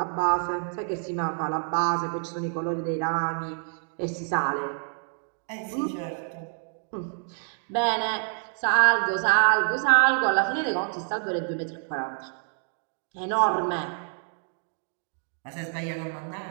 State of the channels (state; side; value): silent; left; 60 dB below the other